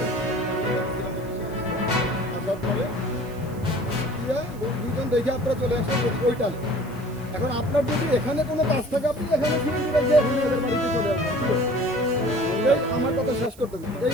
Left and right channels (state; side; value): noise; right; hiss, 24 dB below the sound